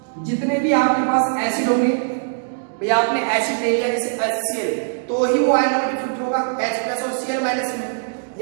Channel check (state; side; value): silent; left; digital silence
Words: जितने भी आपके पास एसिड होंगे, भैया आपने एसिड ले लिया जैसे HCl, तो ही वो आयन में डिफ्यूज होगा H+ और Cl- में।